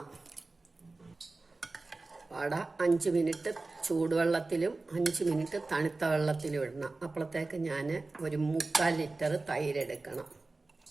വട 5 മിനിറ്റ് ചൂടുവെള്ളത്തിലും 5 മിനിറ്റ് തണുത്ത വെള്ളത്തിലും ഇടണം. അപ്പോഴത്തേക്ക് ഞാൻ ഒരു 3/4 ലിറ്റർ തൈര് എടുക്കണം.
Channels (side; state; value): left; quieter; 3.4 dB